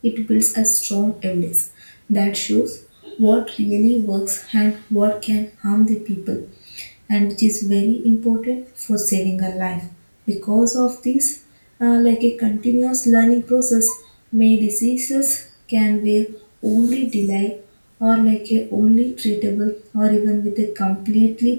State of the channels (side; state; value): both; inverted; correlation -1.00